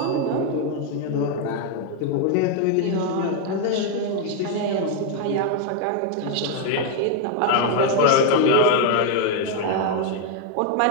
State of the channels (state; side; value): different; both; correlation 0.01